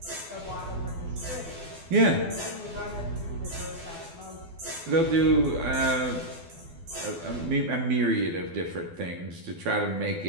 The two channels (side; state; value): left; late; 12 ms